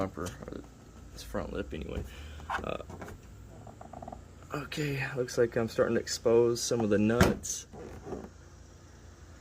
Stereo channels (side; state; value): both; identical; correlation 1.00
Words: or this front lip anyway. Okay, looks like I'm starting to expose some of the nuts.